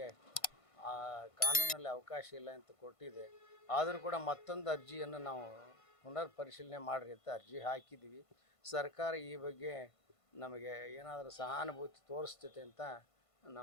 ಕಾನೂನಲ್ಲಿ ಅವಕಾಶ ಇಲ್ಲ ಅಂತ ಕೊಟ್ಟಿದೆ. ಆದರೂ ಕೂಡ ಮತ್ತೊಂದು ಅರ್ಜಿಯನ್ನು ನಾವು ಪುನರ್ ಪರಿಶೀಲನೆ ಮಾಡಿರಿ ಅಂತ ಅರ್ಜಿ ಹಾಕಿದ್ದೀವಿ. ಸರ್ಕಾರ ಈ ಬಗ್ಗೆ ನಮಗೆ ಏನಾದರೂ ಸಹಾನುಭೂತಿ ತೋರಿಸ್ತೈತೆ ಅಂತ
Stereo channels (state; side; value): late; right; 1.5 ms